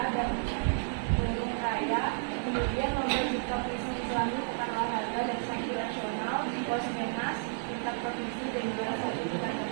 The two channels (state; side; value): silent; left; 57 dB below the other